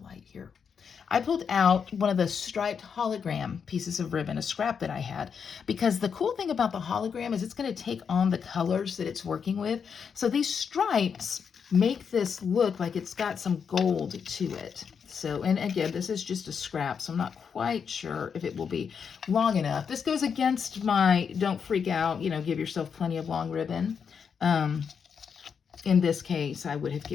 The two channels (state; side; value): quieter; right; 6.6 dB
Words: light here. I pulled out one of the striped hologram pieces of ribbon, a scrap that I had, because the cool thing about the hologram is it's going to take on the colors that it's working with. So these stripes make this look like it's got some gold to it. So, and again, this is just a scrap, so I'm not quite sure if it will be long enough. This goes against my don't freak out, you know, give yourself plenty of long ribbon. In this case, I would have